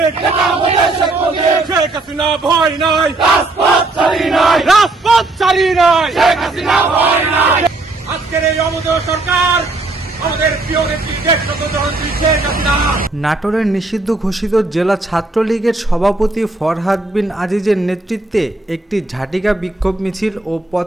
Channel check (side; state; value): left; quieter; 3.1 dB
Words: শেখ হাসিনা ভয় নাই, রাজপথ ছাড়ি নাই। আজকের এই অমোদয় সরকার আমাদের প্রিয় নেত্রী দেশনেত্রী শেখ হাসিনা। নাটোরের নিষিদ্ধ ঘোষিত জেলা ছাত্রলীগের সভাপতি ফরহাদ বিন আজিজের নেতৃত্বে একটি ঝাটিকা বিক্ষোভ মিছিল ও